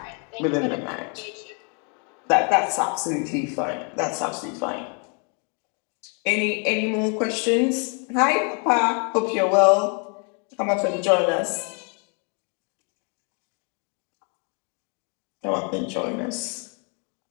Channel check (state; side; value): quieter; right; 37.4 dB